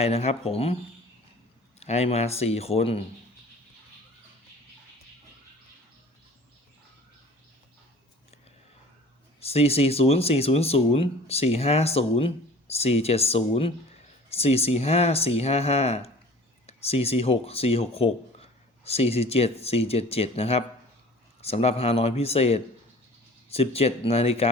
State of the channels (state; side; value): normal; both; correlation 0.46